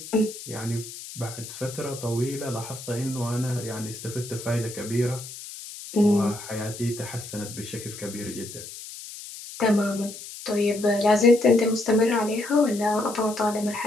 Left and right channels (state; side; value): noise; left; hiss, 12 dB below the sound